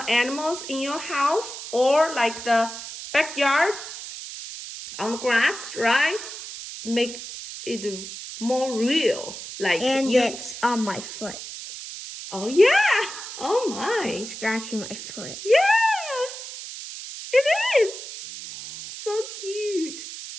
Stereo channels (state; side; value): noise; right; hiss, 10 dB below the sound